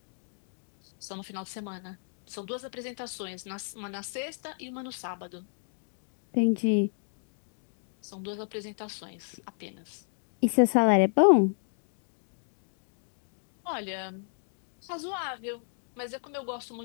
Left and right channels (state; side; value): silent; right; 56 dB below the other